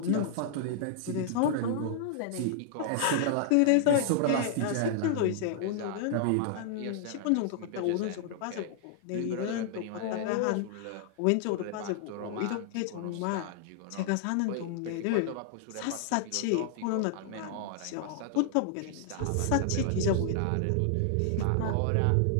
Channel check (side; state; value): both; different; correlation -0.01